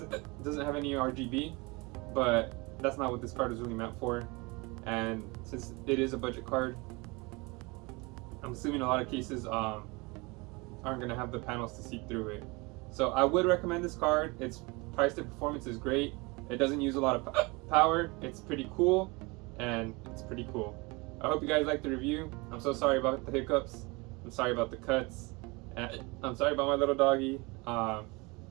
have any RGB, but that's not what this card is really meant for. And since it is a budget card, I'm assuming a lot of cases aren't gonna have the panels to see through it. So I would recommend this card. Its price to performance is great. It doesn't use a lot of power. It's pretty cool, and it's pretty cool. I hope you guys liked the review. I'm so sorry about the hiccups. I'm sorry about the cuts. And I'm sorry about my little doggy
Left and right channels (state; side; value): quieter; left; 26.3 dB